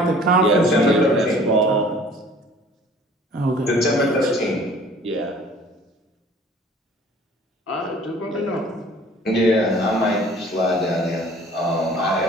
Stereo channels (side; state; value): both; normal; correlation 0.51